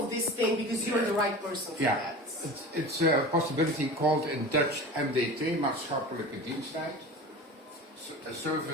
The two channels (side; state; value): both; normal; correlation 0.34